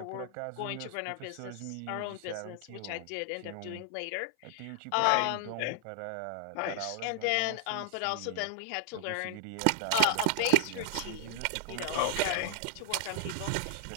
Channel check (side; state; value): both; different; correlation -0.01